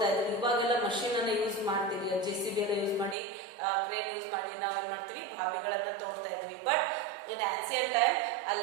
ಇದ್ರು. ಇವಾಗೆಲ್ಲ machine ಅನ್ನ use ಮಾಡ್ತೀವಿ, JCB ಎಲ್ಲ use ಮಾಡಿ, crane use ಮಾಡಿ ನಾವು ಏನ್ ಮಾಡ್ತೀವಿ, ಬಾವಿಗಳನ್ನ ತೋಡ್ತಾ ಇದ್ವಿ. ಬಟ್ ಇನ್ ಆನ್ಸಿಯಂಟ್ ಟೈಮ್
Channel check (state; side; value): drops out; left; at 3.2 s